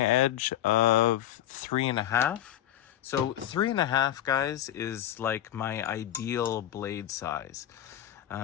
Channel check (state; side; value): quieter; right; 11.9 dB